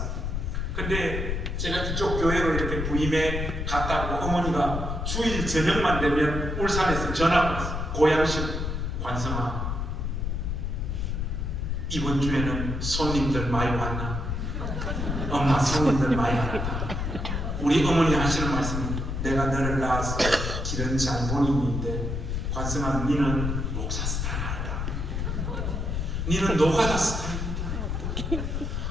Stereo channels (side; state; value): left; noise; rumble, 2 dB below the sound